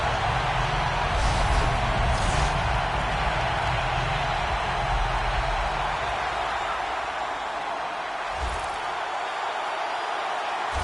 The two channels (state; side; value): identical; both; correlation 1.00